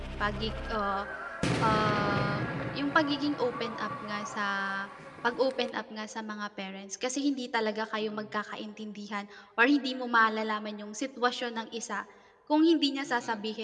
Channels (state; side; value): identical; both; correlation 1.00